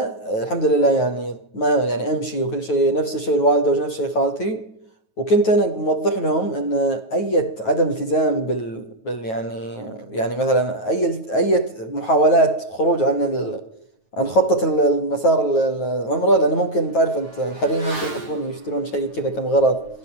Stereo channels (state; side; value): late; right; 9.3 ms